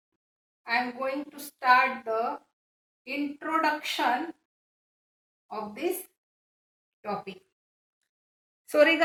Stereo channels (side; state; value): both; identical; correlation 1.00